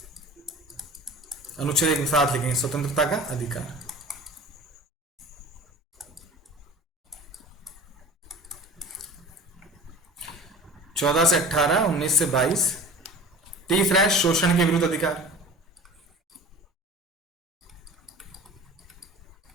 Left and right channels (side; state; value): both; normal; correlation 0.39